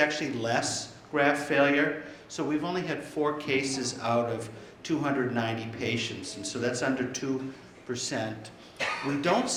less graft failure. So we've only had 4 cases out of 290 patients, and so that's under 2%. We don't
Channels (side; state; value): both; identical; correlation 1.00